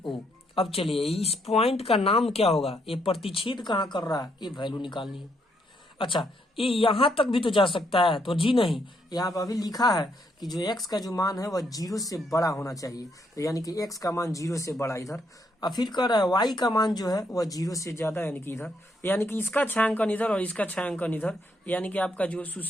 अब चलिए इस पॉइंट का नाम क्या होगा? ये प्रतिच्छेद कहाँ कर रहा है? ये वैल्यू निकालनी है। अच्छा ये यहाँ तक भी तो जा सकता है, तो जी नहीं, यहाँ पर अभी लिखा है कि जो x का जो मान है वह 0 से बड़ा होना चाहिए। तो यानी कि x का मान 0 से बड़ा इधर, और फिर कह रहा है y का मान जो है वह 0 से ज्यादा यानी कि इधर, यानी कि इसका छायांकन इधर और इसका छायांकन इधर, यानी कि आपका जो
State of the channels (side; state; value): both; normal; correlation 0.74